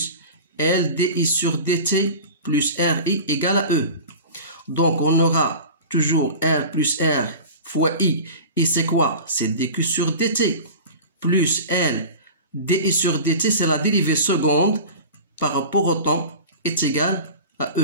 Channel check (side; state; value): both; inverted; correlation -0.34